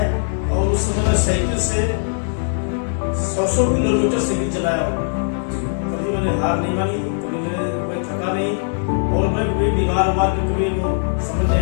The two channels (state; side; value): silent; right; digital silence